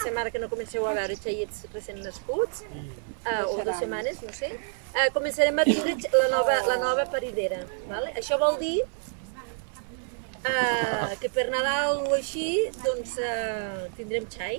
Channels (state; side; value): silent; left; digital silence